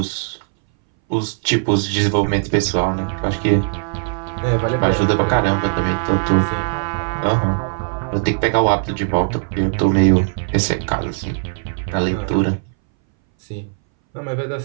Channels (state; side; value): silent; left; 62 dB below the other